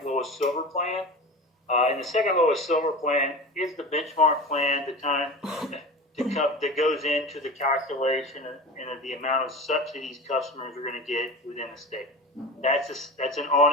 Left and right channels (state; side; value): normal; both; correlation 0.31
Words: lowest silver plan. And the second lowest silver plan is the benchmark plan that goes into the calculation and the amount of subsidies customers are going to get within the state. That's an